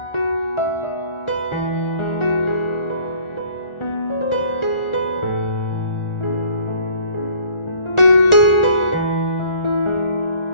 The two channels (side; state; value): right; late; 1.4 ms